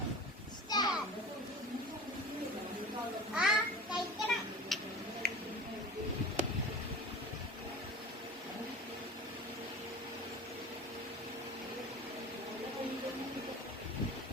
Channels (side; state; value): both; normal; correlation 0.35